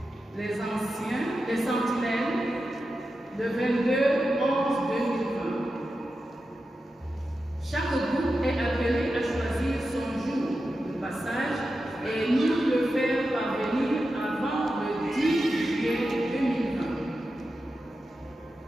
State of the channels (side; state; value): both; normal; correlation 0.91